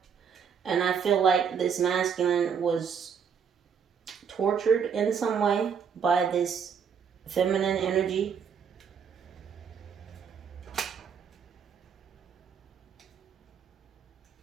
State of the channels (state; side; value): quieter; left; 6.9 dB